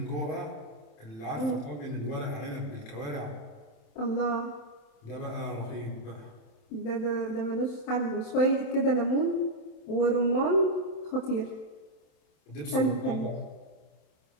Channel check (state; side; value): late; right; 27 ms